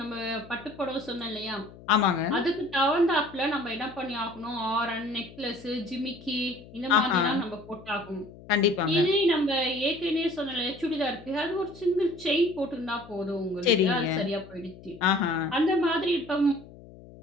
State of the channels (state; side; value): noise; left; hum, 19 dB below the sound